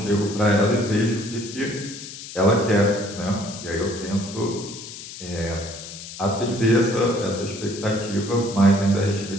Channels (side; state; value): left; noise; hiss, 12 dB below the sound